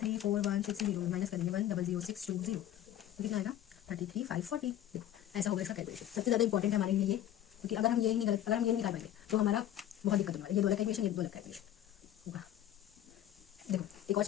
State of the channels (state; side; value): quieter; right; 11.9 dB